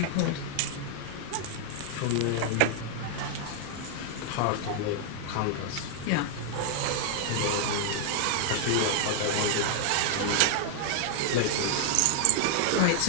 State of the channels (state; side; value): different; both; correlation 0.00